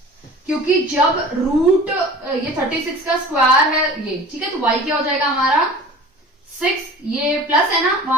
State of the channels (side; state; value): both; normal; correlation 0.41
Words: क्योंकि जब रूट ये 36 का स्क्वायर है ये, ठीक है, तो y क्या हो जाएगा हमारा 6, ये प्लस है ना,